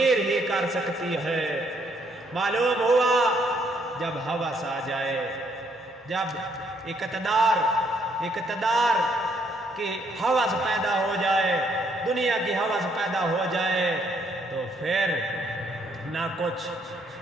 ہی کر سکتی ہے۔ معلوم ہوا جب ہوس آ جائے، جب اقتدار کی ہوس پیدا ہو جائے، دنیا کی ہوس پیدا ہو جائے، تو پھر نہ کچھ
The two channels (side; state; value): both; normal; correlation 0.70